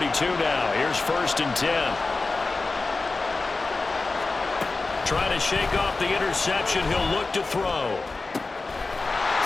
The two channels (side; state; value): right; quieter; 3.7 dB